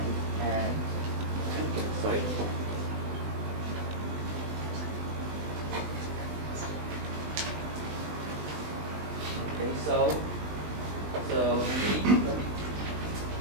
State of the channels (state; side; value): late; left; 20 ms